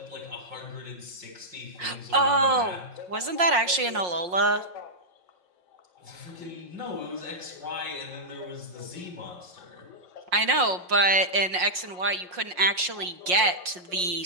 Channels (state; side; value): late; left; 5.6 ms